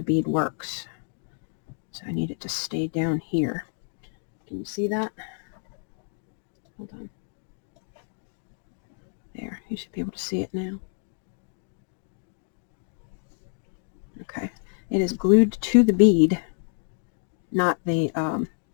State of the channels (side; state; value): right; silent; 59 dB below the other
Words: bead works. So I need it to stay down here. Can you see that? Hold on. There, you should be able to see it now. Okay, it is glued to the bead, not the